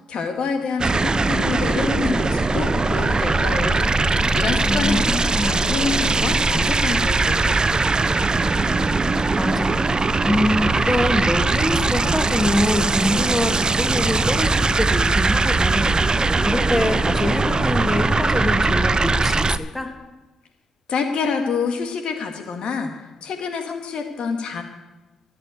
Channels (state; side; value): normal; both; correlation 0.83